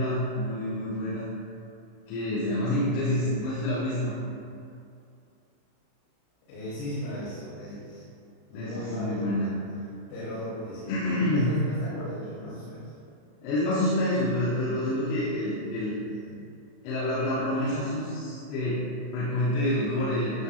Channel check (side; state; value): right; late; 34 ms